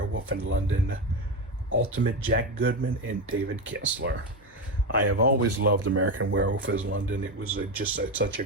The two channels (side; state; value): both; normal; correlation 0.14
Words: in London, Ultimate Jack Goodman and David Kessler. I have always loved American Werewolf in London. It was such a